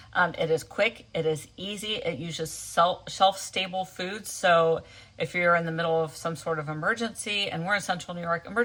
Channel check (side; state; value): both; identical; correlation 1.00